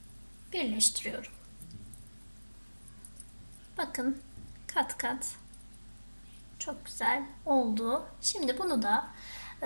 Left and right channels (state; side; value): inverted; both; correlation -1.00